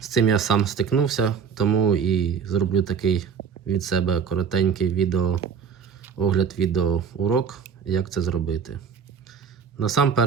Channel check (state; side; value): quieter; left; 6.7 dB